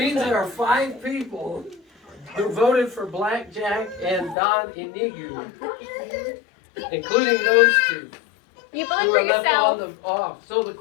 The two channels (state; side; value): drops out; right; at 4.4 s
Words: there are 5 people who voted for Blackjack and Don Inigo, including those 2. You Who voted for are left on yourself. the off. So the